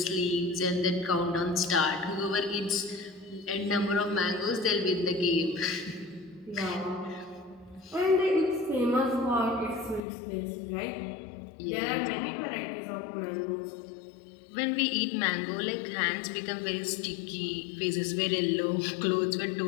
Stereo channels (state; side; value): drops out; right; at 10.0 s